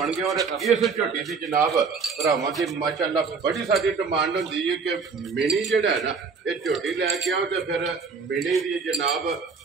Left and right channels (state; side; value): quieter; left; 5.1 dB